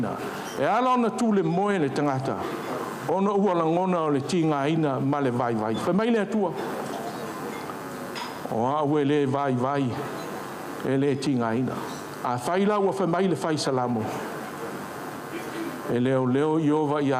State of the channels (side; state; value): both; identical; correlation 1.00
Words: E ala na tūle moe le tangata. Ona ua langona o le tinga ina ma le vai. Wha mai le atua. O au e le vai, e le tinga ina. A whaila ua wha mai le whai salamo. E leo iova